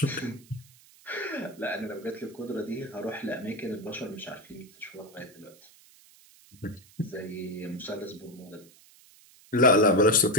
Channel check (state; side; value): noise; right; hiss, 25 dB below the sound